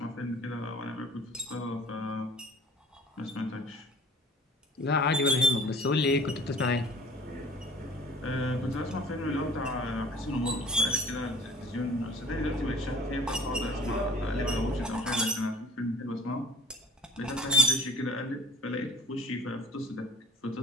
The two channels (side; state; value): both; normal; correlation 0.47